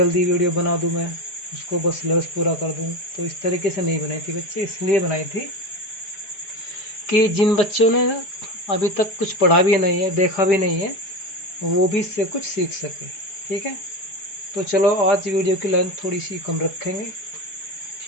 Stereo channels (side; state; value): right; late; 4.7 ms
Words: वीडियो बना दूँ, मैं उसको बस सिलेबस पूरा कर दूँ। तो इस तरीके से नहीं बनाई थी बच्चे, इसलिए बनाई थी कि जिन बच्चों ने अभी तक कुछ पढ़ा भी नहीं है, देखा भी नहीं है, वो भी इससे कुछ सीख सके, ठीक है। तो चलो आज वीडियो की लेंथ थोड़ी सी कम रखेंगे,